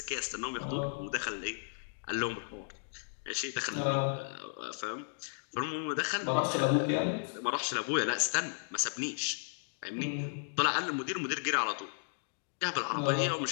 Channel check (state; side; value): silent; right; digital silence